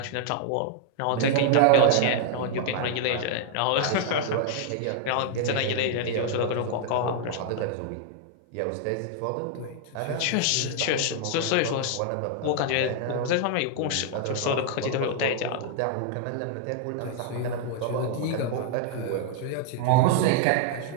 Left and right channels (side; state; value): both; different; correlation 0.00